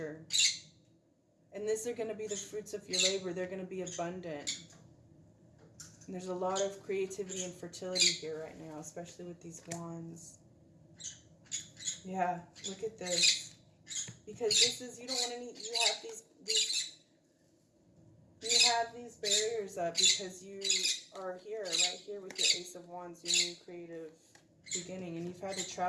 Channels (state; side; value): identical; both; correlation 1.00